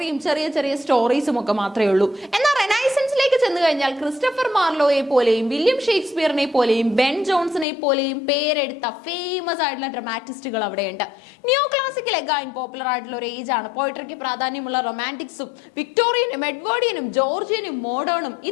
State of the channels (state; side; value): drops out; right; at 7.7 s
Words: ചെറിയ ചെറിയ സ്റ്റോറീസും ഒക്കെ മാത്രമേ ഉള്ളൂ. എന്നാൽ റെനൈസൻസിലേക്ക് ചെന്ന് കഴിഞ്ഞാൽ ക്രിസ്റ്റഫർ മാർലോയെ പോലെയും വില്യം ഷേക്സ്പിയറിനെ പോലെയും ബെൻ ജോൺസനെ പോലെയും പേരെടുത്ത ഫേമസ് ആയിട്ടുള്ള ഡ്രാമാറ്റിസ്റ്റുകൾ അവിടെയുണ്ട്. നിയോ ക്ലാസിക്കൽ എഗൈൻ പോപ്പുലർ ആയിട്ടുള്ള ഒരു ഏജ് ആണ്. പോയിട്രിക്ക് പ്രാധാന്യമുള്ള റൊമാൻറ്റിക്സും വിക്ടോറിയനും എഡ്വേർഡിയനും ജോർജിയനും മോഡേണും